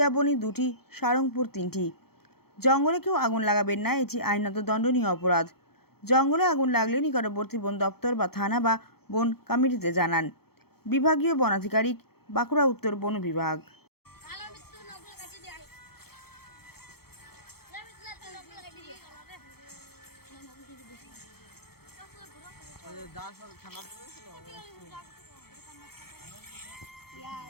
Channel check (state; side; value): late; right; 0.95 ms